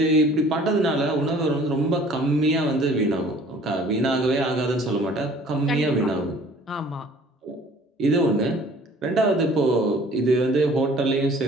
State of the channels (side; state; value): both; normal; correlation 0.52